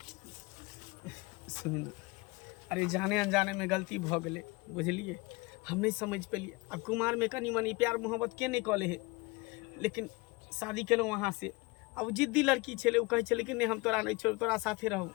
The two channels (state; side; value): quieter; right; 25.0 dB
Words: सुन, अरे जाने अनजाने में गलती भ गेलै, बुझलिए? हम नहीं समझ पेलिए। अब कुमार में कनी मनी प्यार मोहब्बत के नहीं कले है, लेकिन शादी केलहुँ वहाँ से। अब जिद्दी लड़की छे, उ कहे छे कि नहीं हम तोरा नहीं छोड़, तोरा साथे रहू।